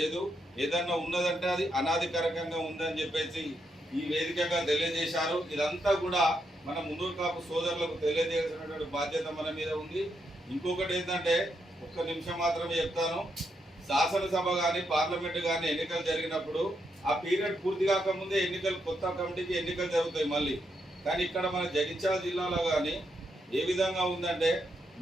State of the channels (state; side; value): normal; both; correlation 0.81